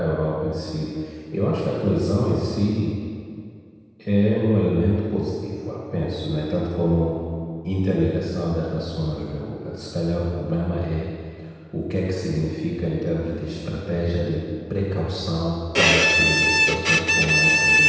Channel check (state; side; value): identical; both; correlation 1.00